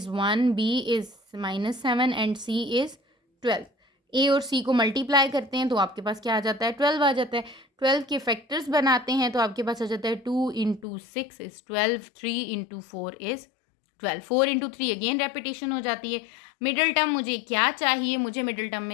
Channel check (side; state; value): right; drops out; at 10.9 s